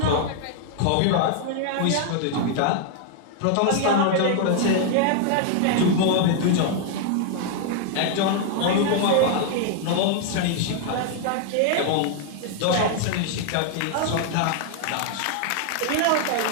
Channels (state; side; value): different; both; correlation 0.00